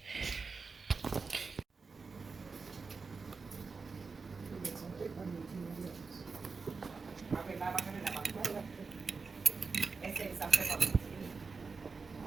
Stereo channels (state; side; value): quieter; left; 4.7 dB